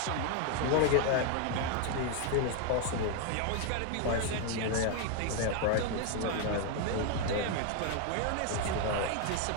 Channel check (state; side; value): different; both; correlation 0.01